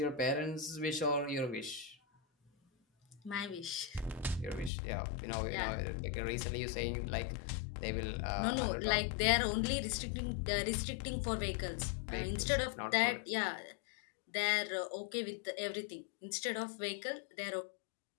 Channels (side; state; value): right; drops out; at 4.7 s